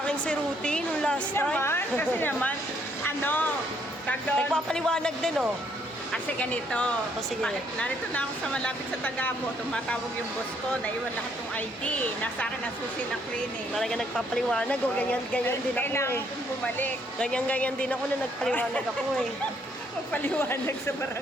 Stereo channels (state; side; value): normal; both; correlation 0.69